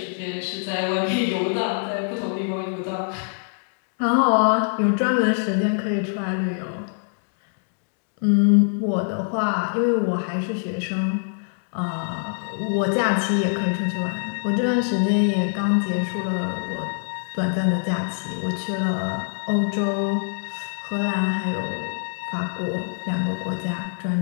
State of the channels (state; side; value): silent; right; digital silence